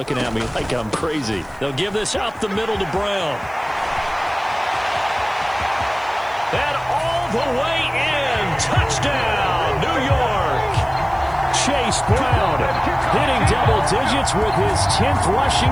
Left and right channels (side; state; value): left; noise; hiss, 29 dB below the sound